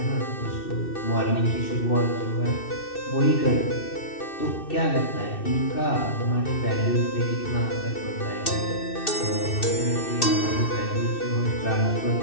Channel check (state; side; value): late; right; 2.6 ms